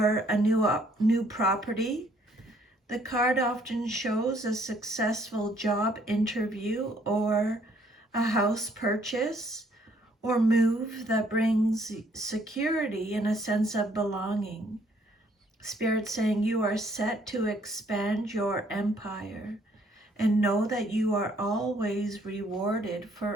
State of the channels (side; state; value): both; normal; correlation 0.65